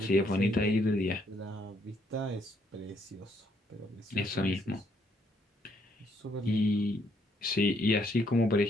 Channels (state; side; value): normal; both; correlation 0.70